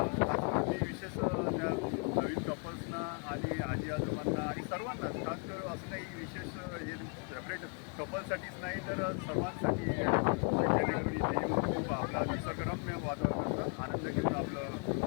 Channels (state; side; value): quieter; right; 37.9 dB